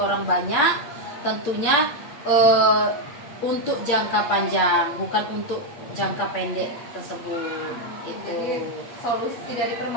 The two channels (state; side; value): late; right; 8.5 ms